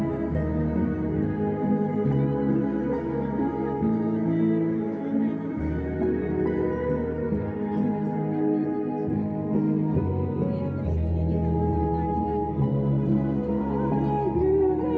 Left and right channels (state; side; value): identical; both; correlation 1.00